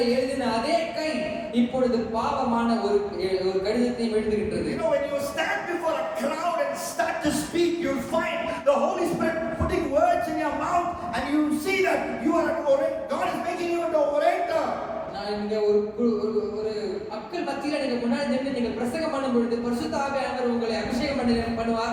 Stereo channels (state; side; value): identical; both; correlation 1.00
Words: எழுதின அதே கை இப்பொழுது பாவமான ஒரு கடிதத்தை எழுதுகின்றது. You know, when you stand before a crowd and start to speak, you'll find the Holy Spirit putting words in your mouth, and you see that you are an orator. God is making you an orator. நான் இங்க ஒரு மக்கள் மக்கள் மத்தியில நீங்க முன்னாடி நின்று நீங்க பிரசங்கம் பண்ணும் பொழுது பரிசுத்த ஆவியானவர் உங்களை அபிஷேகம்